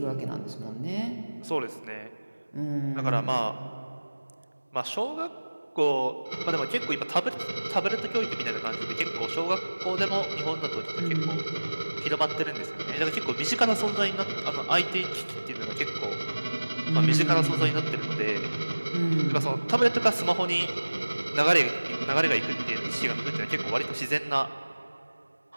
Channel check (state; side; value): inverted; both; correlation -1.00